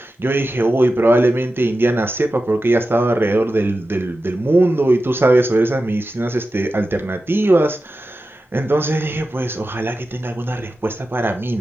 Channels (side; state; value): both; normal; correlation 0.92